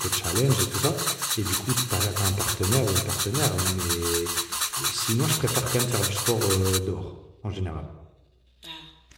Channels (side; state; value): both; identical; correlation 1.00